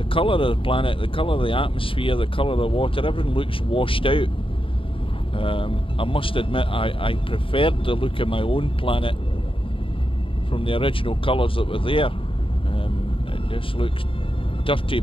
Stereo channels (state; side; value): late; right; 0.26 ms